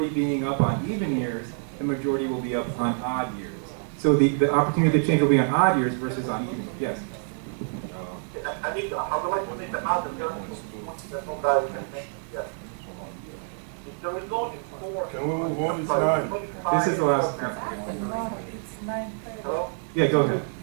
being up on even years, the majority will be up on odd years. So the opportunity to change will be on odd years versus on even. Yes. I need to, I would like to make the other that nobody can make yet. If there is only 4. Can we move on? It's 9. This is the last. It's 9:30. Hello? Yeah, go ahead.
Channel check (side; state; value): left; silent; 60 dB below the other